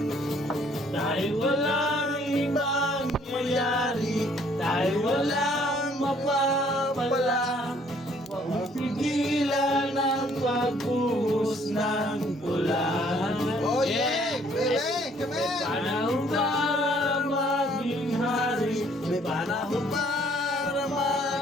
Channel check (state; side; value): normal; both; correlation 0.62